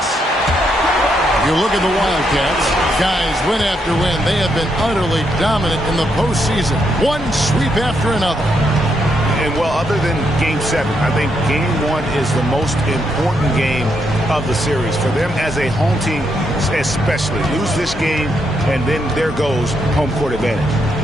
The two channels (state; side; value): normal; both; correlation 0.78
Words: You look at the Wildcats, guys, win after win. They have been utterly dominant in the postseason. One sweep after another. And, well, other than Game 7, I think Game 1 is the most important game of the series. For them as a home team, especially. Lose this game, and then there goes home court advantage.